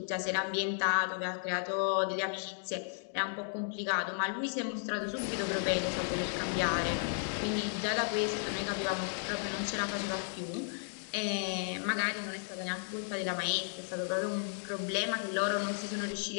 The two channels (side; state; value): right; silent; digital silence